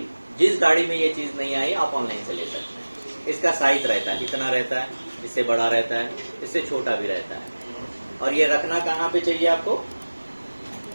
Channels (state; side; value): inverted; both; correlation -1.00